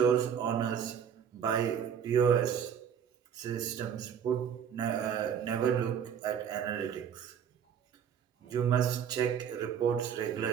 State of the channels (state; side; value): quieter; left; 8.1 dB